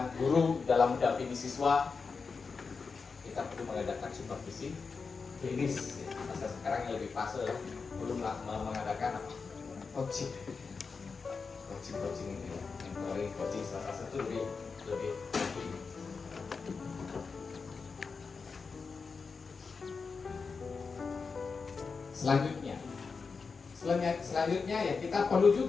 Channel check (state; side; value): quieter; right; 4.9 dB